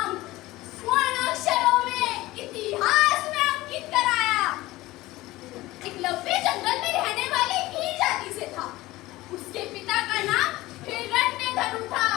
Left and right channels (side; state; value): right; quieter; 18.3 dB